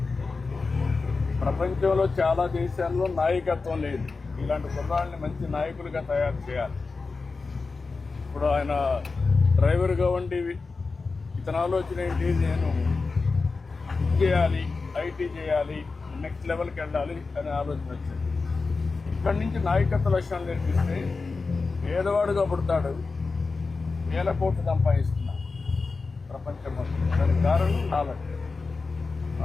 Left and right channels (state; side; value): quieter; right; 4.2 dB